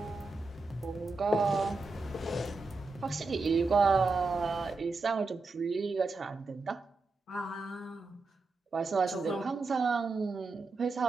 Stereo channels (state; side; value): quieter; left; 3.8 dB